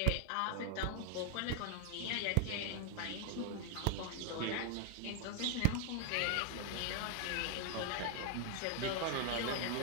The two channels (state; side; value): different; both; correlation 0.00